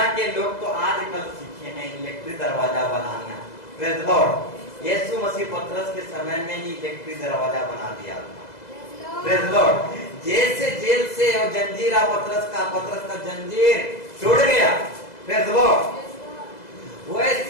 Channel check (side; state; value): right; late; 2.0 ms